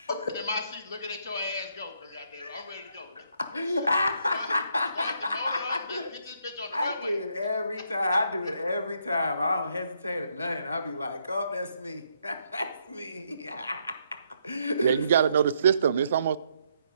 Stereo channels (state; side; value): inverted; both; correlation -0.74